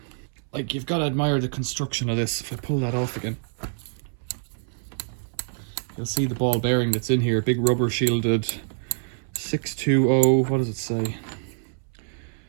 Like, you've got to admire the construction of this. If I pull that off again, you'll see the ball bearing that's in here. Big rubber shielded 620, what does it say?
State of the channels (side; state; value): left; silent; 61 dB below the other